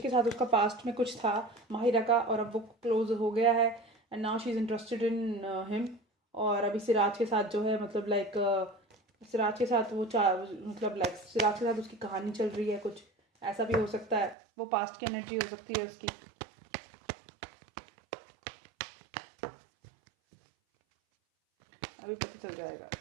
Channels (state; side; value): drops out; left; at 14.4 s